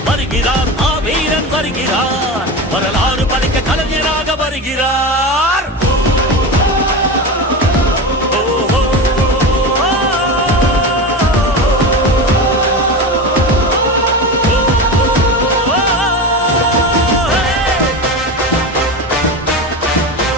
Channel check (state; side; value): normal; both; correlation 0.23